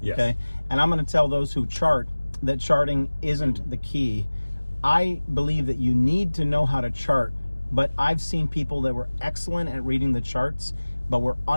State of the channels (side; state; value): both; inverted; correlation -1.00